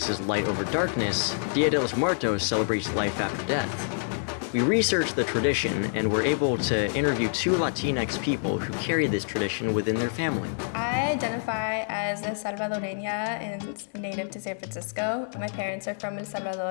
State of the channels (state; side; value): silent; right; digital silence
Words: light over darkness, Dia de los Muertos celebrates life after death. We researched the tradition and were able to interview two Latinx people who carry this tradition within their family. I identify as a Salvadoreña and native to San Francisco. My parents are from El